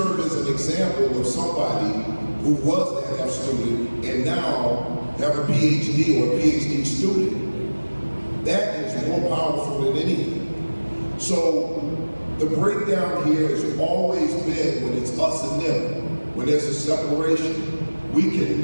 as an example of somebody who was that F student and now have a PhD or a PhD student, that is more powerful than anything. So the breakdown here has always been when it's us and them, when there's a separation. We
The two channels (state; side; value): inverted; both; correlation -1.00